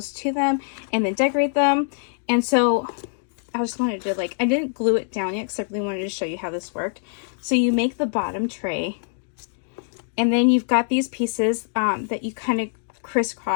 to them and then decorate them. And so I just wanted to like, I didn't glue it down yet because I really wanted to show you how this worked. So you make the bottom tray and then you've got these pieces that you kind of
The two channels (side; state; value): right; silent; digital silence